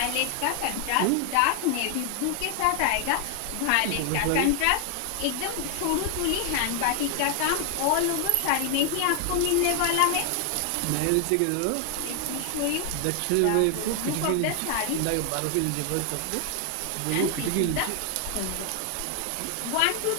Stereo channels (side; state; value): both; different; correlation 0.00